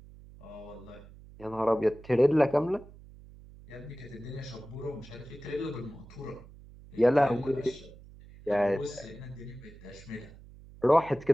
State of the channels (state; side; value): noise; right; hum, 20 dB below the sound